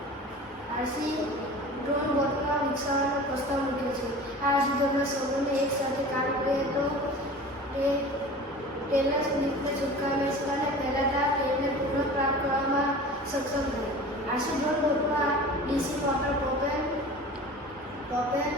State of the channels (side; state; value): both; normal; correlation 0.38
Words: આરસી ડ્રોન બોટમાં વિકસાવવાનો પ્રસ્તાવ મૂક્યો છે. આ આરસી ડ્રોનમાં સૌને એક સાથે કામ કરે તો તે તેલના સ્લિપને છુટકાવી શકે અને ફેલાતા તેલને પુનઃપ્રાપ્ત કરવામાં સક્ષમ થાય. આરસી ડ્રોન બોટમાં ડીસી મોટર પ્રોપેન